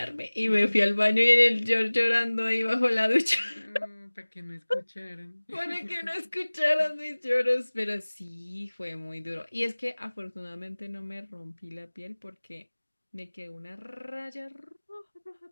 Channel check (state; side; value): inverted; both; correlation -1.00